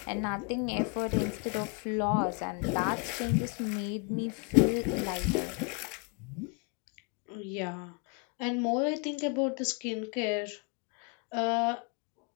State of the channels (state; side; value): quieter; right; 33.4 dB